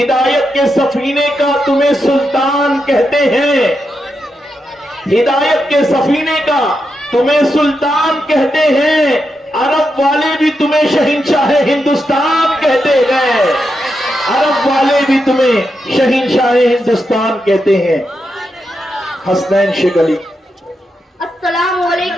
के सफीने का तुम्हें सुल्तान कहते हैं, हिदायत के सफीने का तुम्हें सुल्तान कहते हैं। अरब वाले भी तुम्हें शहंशाह हिंदुस्तान कहते हैं, अरब वाले भी तुम्हें शहंशाह हिंदुस्तान कहते हैं। हसनैन शेख अली। अस्सलाम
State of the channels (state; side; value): normal; both; correlation 0.85